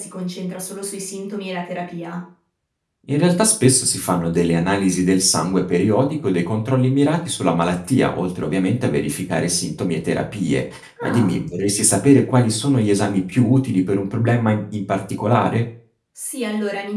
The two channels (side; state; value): both; identical; correlation 1.00